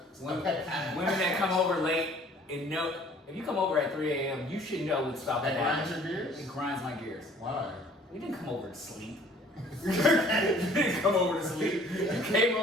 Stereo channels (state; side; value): normal; both; correlation 0.54